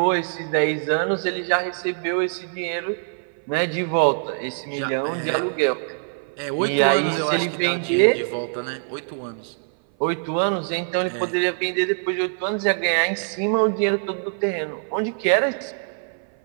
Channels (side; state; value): left; silent; 58 dB below the other